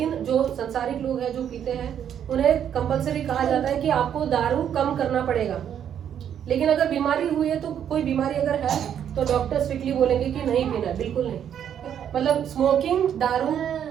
जो संसारिक लोग हैं जो पीते हैं उन्हें कंपलसरी कहा जाता है कि आपको दारू कम करना पड़ेगा। लेकिन अगर बीमारी हुई है, तो कोई बीमारी अगर है तो डॉक्टर स्ट्रिक्टली बोलेंगे कि नहीं पीना, बिल्कुल नहीं। मतलब स्मोकिंग, दारू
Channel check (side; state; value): left; quieter; 9.2 dB